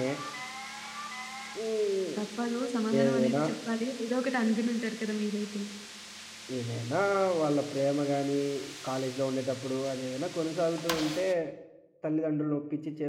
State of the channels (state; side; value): identical; both; correlation 1.00